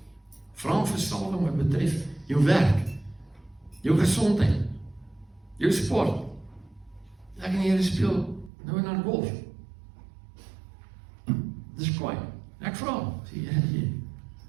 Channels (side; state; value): left; drops out; at 8.5 s